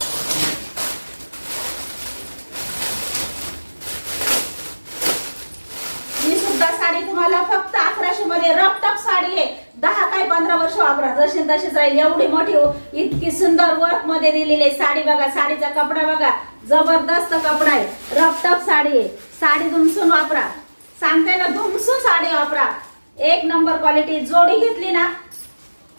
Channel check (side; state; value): both; inverted; correlation -1.00